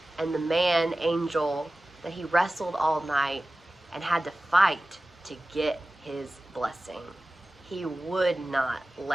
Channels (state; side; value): normal; both; correlation 0.96